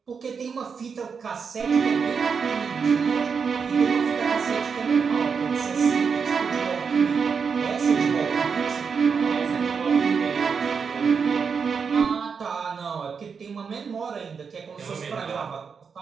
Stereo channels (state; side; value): quieter; left; 5.9 dB